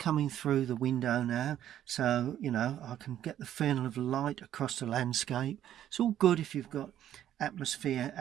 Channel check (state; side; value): quieter; left; 11.4 dB